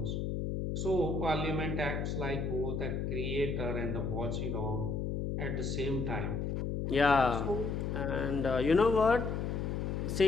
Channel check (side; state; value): left; noise; hum, 1 dB below the sound